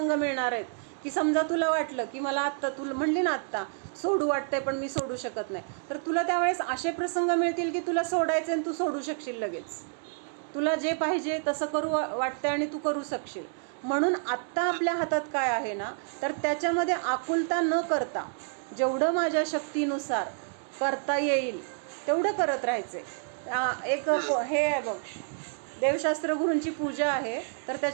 मिळणार आहेत की समजा तुला वाटलं की मला आत्ता, तुला म्हणली ना आत्ता सोडू वाटतंय पण मी सोडू शकत नाही, तर तुला त्यावेळेस असे प्रसंग मिळतील की तुला सोडायचे आणि तू सोडू शकशील लगेच. तुला जे पाहिजे तसं करू वाटतंय आणि तू करू शकशील. म्हणून आत्ता आपल्या हातात काय आहे ना, तर त्याच्यामध्ये आकुलता न करता जेवढं माझ्या शक्तीनुसार करता येईल तेवढं करत राहायचे. एक हे आहे बघ, देवशास्त्र गुरूंची पूजा आहे, तर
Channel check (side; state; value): left; silent; 59 dB below the other